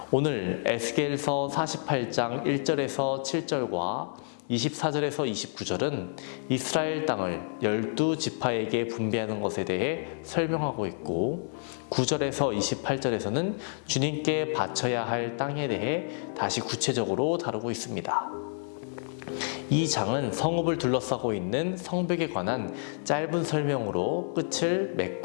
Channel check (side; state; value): right; silent; digital silence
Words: 오늘 에스겔서 48장 1절에서 7절과 24절에서 29절은 이스라엘 땅을 12지파에게 분배하는 것에 대해 설명하고 있고 9절에서 28절에서는 주님께 바쳐야 할 땅에 대해 다시 구체적으로 다루고 있습니다. 이 장은 성읍을 둘러싸고 있는 성벽에 관한 짧은 설명으로 끝을